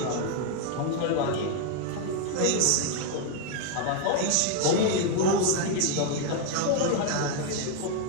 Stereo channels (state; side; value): different; both; correlation 0.00